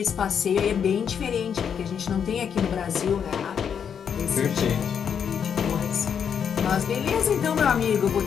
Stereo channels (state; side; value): quieter; right; 7.6 dB